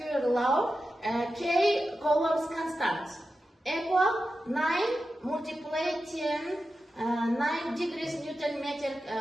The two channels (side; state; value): both; normal; correlation 0.92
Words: law, K Coulomb's constant equal 9 multiply 10 9 degrees Newton meter